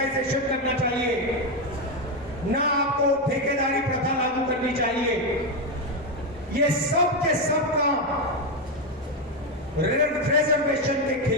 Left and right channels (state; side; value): normal; both; correlation 0.08